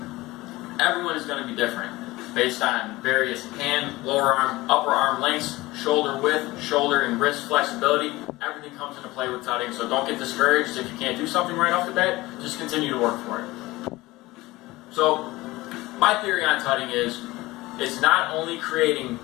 everyone is going to be different based on various hand, lower arm, upper arm lengths, shoulder width, shoulder and wrist flexibility. Everything comes into play with tutting, so don't get discouraged if you can't do something right off the bat. Just continue to work for it. So my theory on tutting is it's not only creating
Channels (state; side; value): quieter; right; 19.6 dB